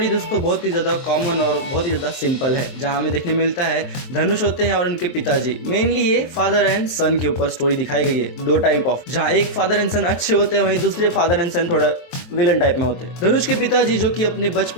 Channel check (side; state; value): right; late; 23 ms